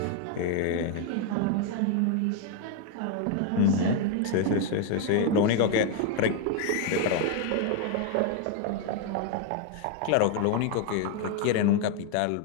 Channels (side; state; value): both; different; correlation 0.00